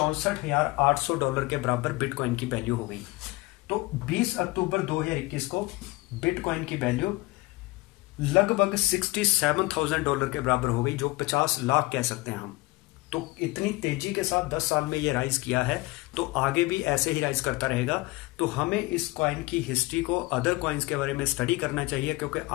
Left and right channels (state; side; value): quieter; right; 22.2 dB